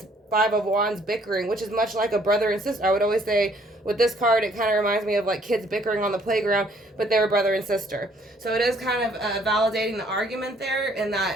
Five of Wands bickering, which is much like a brother and sister. I would always say with this card, it kind of reminds me of like kids bickering on the playground, but they were brother and sister. So it is kind of validating the argument there, in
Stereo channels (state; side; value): normal; both; correlation 0.63